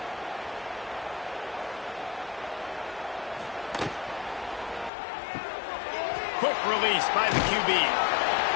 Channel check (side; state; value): right; drops out; at 4.9 s